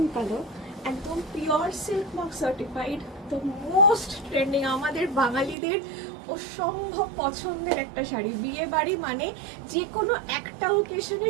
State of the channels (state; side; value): drops out; left; at 5.6 s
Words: colour, একদম পিওর সিল্ক মার্ক সার্টিফাইড। তো মোস্ট ট্রেন্ডিং, আমাদের বাঙালিদের অসম্ভব পছন্দের একটা শাড়ি। বিয়ে বাড়ি মানে যে কোনো একটা ওকেশনে